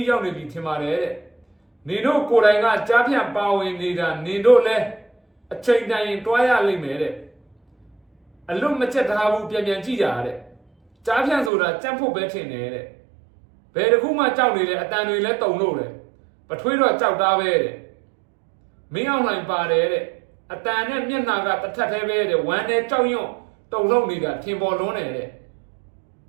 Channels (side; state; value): left; drops out; at 11.5 s